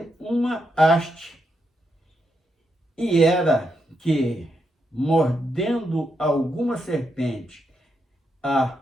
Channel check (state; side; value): normal; both; correlation 0.82